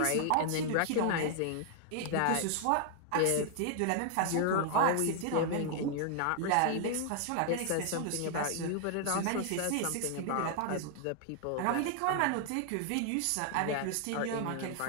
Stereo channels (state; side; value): different; both; correlation 0.00